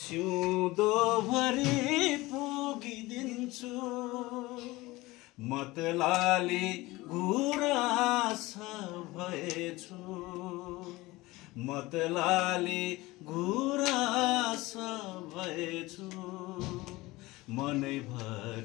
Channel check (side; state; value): right; quieter; 20.4 dB